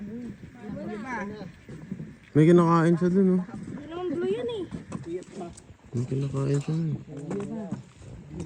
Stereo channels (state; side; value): identical; both; correlation 1.00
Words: May kinakain siya dun, oh. Anong blue yan eh? May kinakain siya dun.